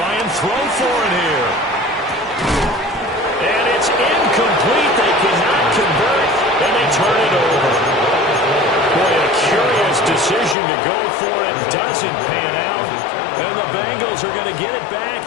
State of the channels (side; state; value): right; drops out; at 10.6 s